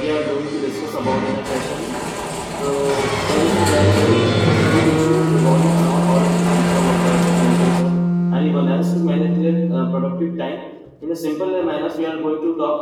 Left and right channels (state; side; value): identical; both; correlation 1.00